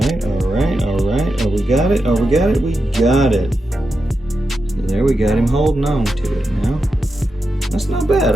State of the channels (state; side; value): normal; both; correlation 0.88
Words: right. Oh, we got it. We got it. So there we got him holding on to it now. That's not bad.